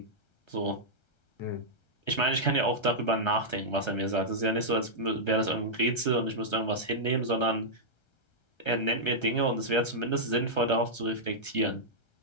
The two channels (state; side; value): late; right; 1.3 ms